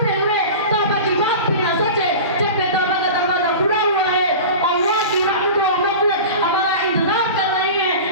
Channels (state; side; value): inverted; both; correlation -0.33